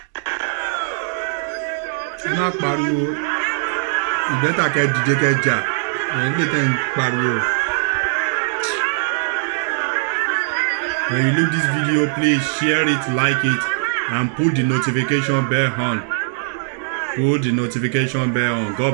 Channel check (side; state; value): left; silent; 63 dB below the other